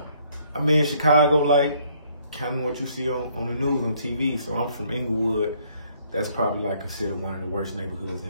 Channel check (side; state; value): both; inverted; correlation -0.66